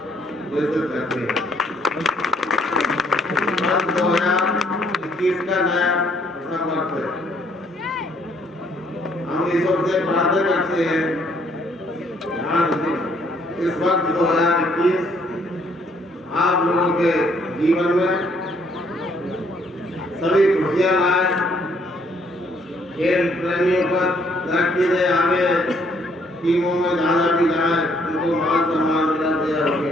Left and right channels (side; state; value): both; normal; correlation 0.66